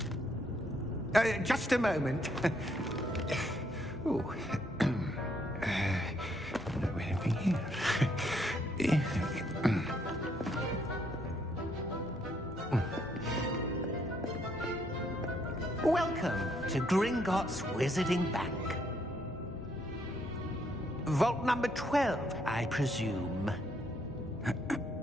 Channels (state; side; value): normal; both; correlation 0.71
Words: Just a moment. Oh. Anything here? Welcome to Gringotts Wizarding Bank. Vault number 12, I presume.